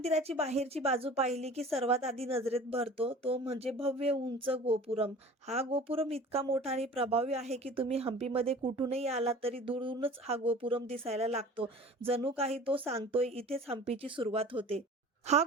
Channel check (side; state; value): both; normal; correlation 0.42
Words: बाहेरची बाजू पाहिली की सर्वात आधी नजरेत भरतो तो म्हणजे भव्य उंच गोपुरम. हा गोपुरम इतका मोठा आणि प्रभावी आहे की तुम्ही हंपीमध्ये कुठूनही आलात तरी दूरूनच हा गोपुरम दिसायला लागतो. जणू काही तो सांगतोय इथेच हंपीची सुरुवात होते. हा